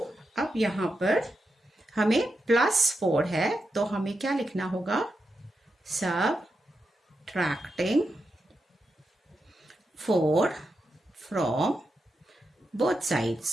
अब यहाँ पर हमें +4 है तो हमें क्या लिखना होगा, सबट्रैक्टिंग 4 फ्रॉम बोथ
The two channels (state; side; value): normal; both; correlation 0.87